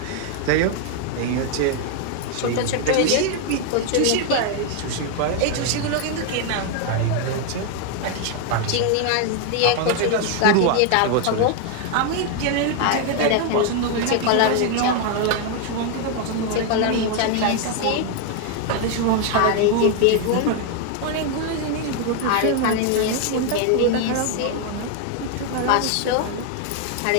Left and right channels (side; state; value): both; different; correlation 0.00